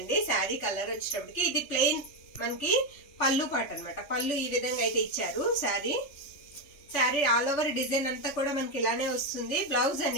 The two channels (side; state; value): right; late; 3.5 ms